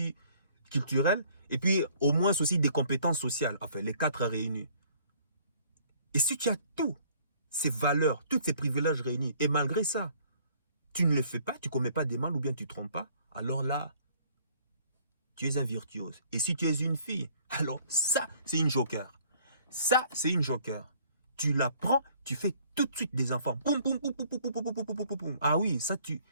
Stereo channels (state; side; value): inverted; both; correlation -0.58